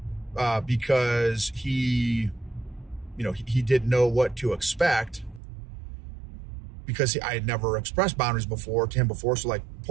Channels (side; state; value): left; drops out; at 5.4 s